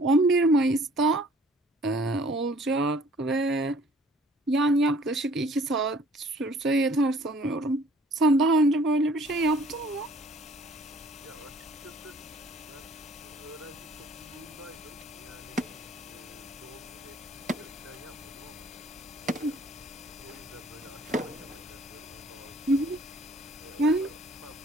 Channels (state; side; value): normal; both; correlation 0.56